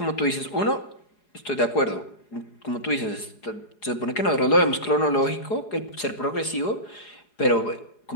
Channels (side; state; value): right; late; 4.8 ms